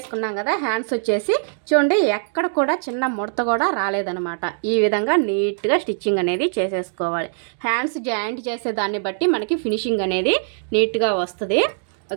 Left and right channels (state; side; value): silent; left; digital silence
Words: కదా, హ్యాండ్స్ వచ్చేసి చూడండి ఎక్కడ కూడా చిన్న ముడత కూడా రాలేదనమాట. ఈ విధంగా నీట్గా స్టిచ్చింగ్ అనేది చేసేసుకోవాలి. హ్యాండ్స్ జాయింట్ చేసే దాన్ని బట్టి మనకి ఫినిషింగ్ అనేది నీట్గా వస్తుంది.